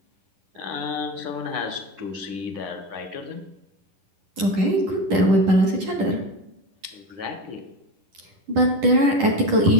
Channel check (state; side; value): late; left; 10 ms